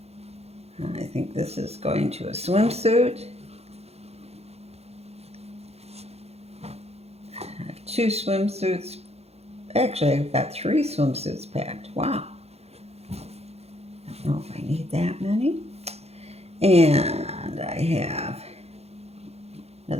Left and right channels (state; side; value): late; left; 0.30 ms